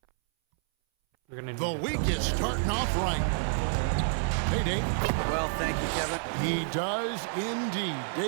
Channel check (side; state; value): left; silent; 59 dB below the other